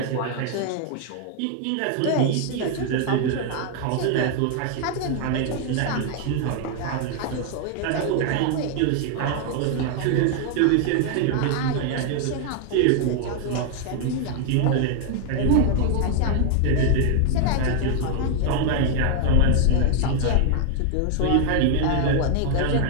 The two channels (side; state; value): both; different; correlation 0.00